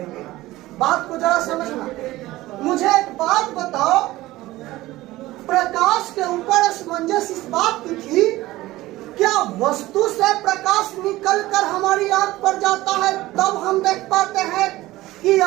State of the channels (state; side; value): quieter; left; 17.6 dB